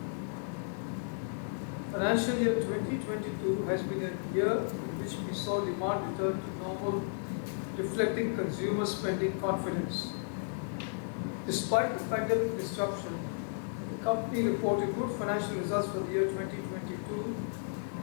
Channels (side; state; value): right; silent; 55 dB below the other